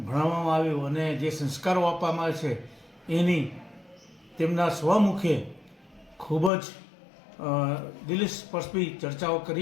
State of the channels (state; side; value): drops out; right; at 6.5 s